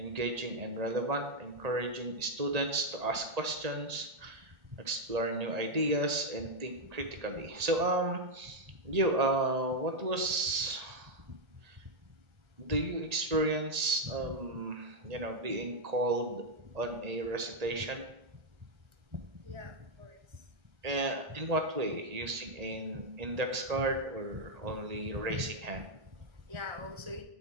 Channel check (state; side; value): late; left; 1.8 ms